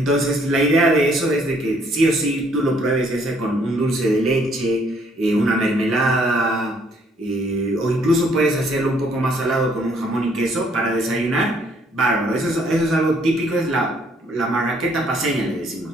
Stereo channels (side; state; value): both; normal; correlation 0.65